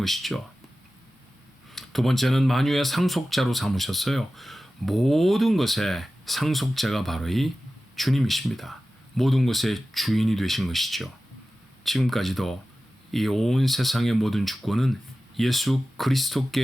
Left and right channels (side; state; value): both; normal; correlation 0.95